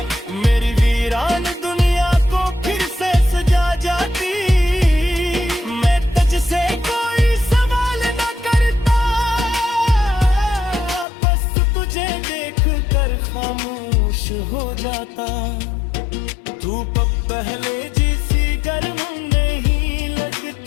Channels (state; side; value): drops out; right; at 11.1 s